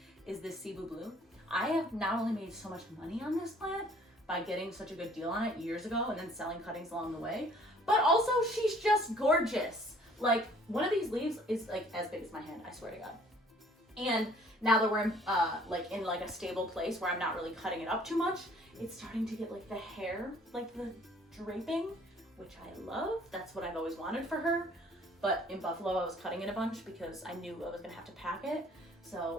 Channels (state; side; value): normal; both; correlation 0.57